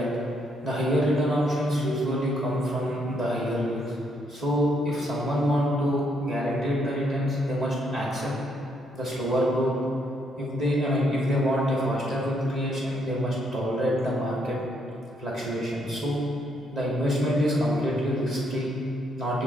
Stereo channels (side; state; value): both; normal; correlation 0.73